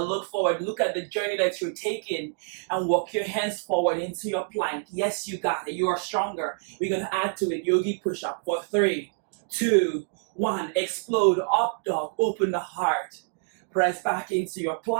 look forward, look at the journey that you're taking and walk your hands forward into your plank. Yes, you got it. You are stronger. We're going to add to it yogi push-up for 3, 2, 1. Explode, up dog, open the heart. Press back into your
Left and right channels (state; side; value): silent; left; digital silence